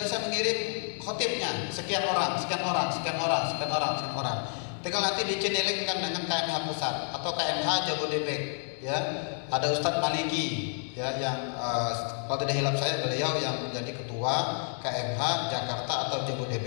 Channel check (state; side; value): silent; right; 58 dB below the other